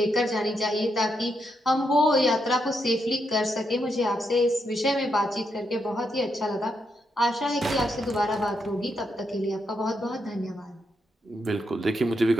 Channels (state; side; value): normal; both; correlation 0.81